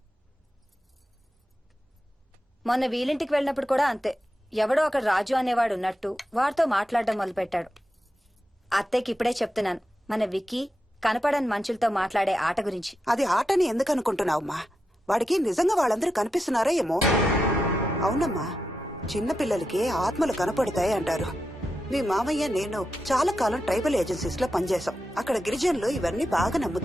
మొన్న వీలింటికి వెళ్ళినప్పుడు కూడా అంతే. ఎవడో ఒక రాజు అనేవాడు ఉన్నట్టు వాడితో మాట్లాడడం మొదలుపెట్టాడు. అత్తయ్యకి ఇప్పుడే చెప్తున్నాను, మన విక్కీ కనపడని మనుషులతో మాట్లాడే ఆట గురించి. అది ఆటని ఎందుకు అనుకుంటున్నావమ్మా? వాడికి నిజంగా వాళ్ళందరూ కనిపిస్తున్నారా ఏమో. అవునమ్మా, చిన్నపిల్లలకి ఆత్మలు కనపడతాయి అంటారు. మీ మామయ్య నేను చాలా కాలం ట్రైబల్ ఏజెన్సీస్ లో పనిచేశాం. అక్కడ గిరిజనులు ఇవన్నీ బాగా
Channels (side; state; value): both; normal; correlation 0.88